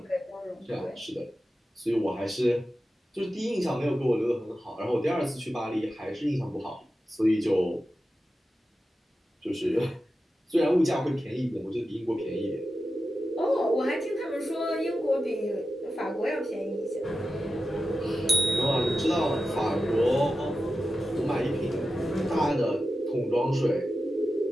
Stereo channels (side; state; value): both; normal; correlation 0.92